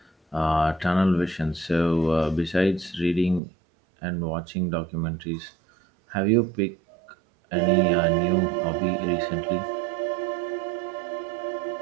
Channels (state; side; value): drops out; left; at 3.4 s